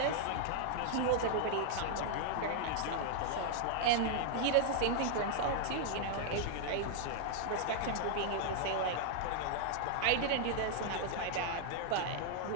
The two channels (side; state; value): both; different; correlation -0.01